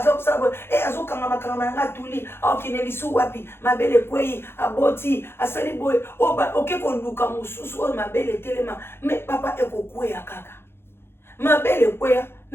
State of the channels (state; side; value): late; right; 0.11 ms